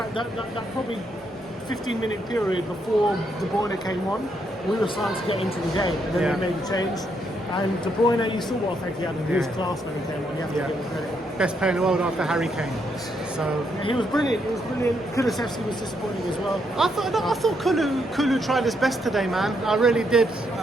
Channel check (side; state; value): both; normal; correlation 0.77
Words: probably 15-minute period before De Bruyne came on. We were starting to get into the game, and then they made a change. And De Bruyne, you saw what effect he had, and he was class when he came on. You have to give him credit. Best player in the world after Harry Kane. So he was brilliant. Kulusevski was disappointing as well. I thought Kulu tried his best today, man. I really did.